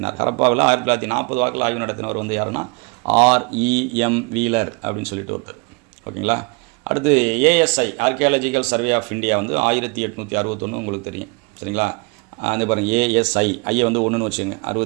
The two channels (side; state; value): left; quieter; 30.5 dB